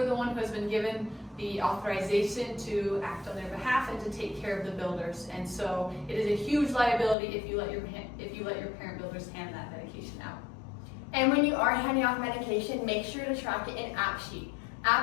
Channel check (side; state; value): right; drops out; at 7.2 s